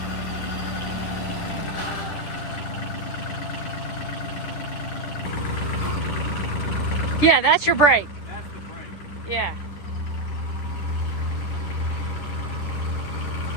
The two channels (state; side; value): late; right; 10 ms